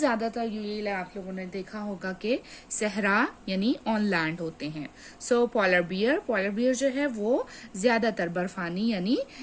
यूजुअली आप लोगों ने देखा होगा कि सहरा यानी ऑन लैंड होते हैं। सो पोलर बियर जो है वो ज्यादातर बर्फानी यानी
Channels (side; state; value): both; identical; correlation 1.00